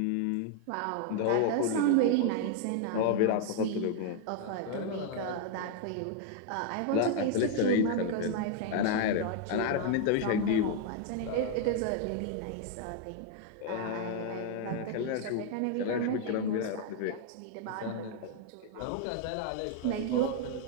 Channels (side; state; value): both; different; correlation 0.00